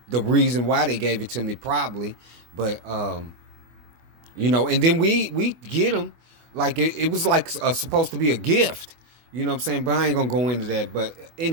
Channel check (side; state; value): left; late; 25 ms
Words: the reason why they gave it to me, probably. But and then we get them like it was like supposed to be a gift. You know what I'm saying? But I ain't gonna go into that. But